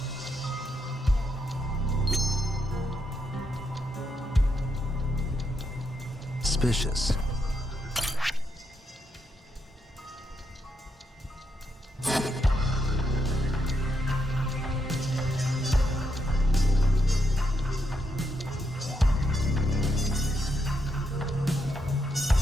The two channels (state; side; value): normal; both; correlation 0.80